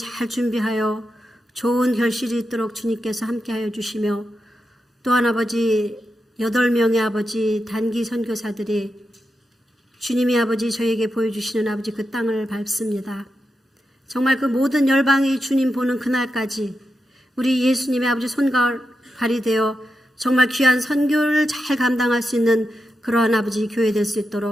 준비하여 좋은 결실이 있도록 주님께서 함께하여 주시며 또한 아버지 8명의 아버지 단기 선교사들이 주님이 아버지 저에게 보여주시는 아버지 그 땅을 밟습니다. 정말 그 모든 열방이 주님 보는 그날까지 우리 예수님의 아버지 손발이 되어 정말 귀한 선교를 잘 감당할 수 있는 그러한 아버지 교회 될 수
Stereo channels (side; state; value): both; normal; correlation 0.88